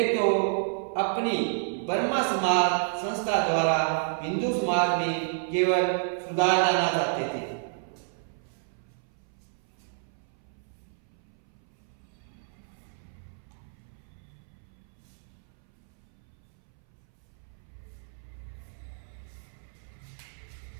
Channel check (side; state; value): left; silent; 58 dB below the other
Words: तो अपनी ब्रह्म समाज संस्था द्वारा हिंदू समाज में केवल सुधार लाना चाहते थे।